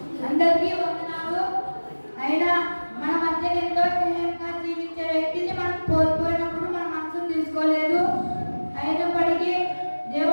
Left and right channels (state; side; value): inverted; both; correlation -1.00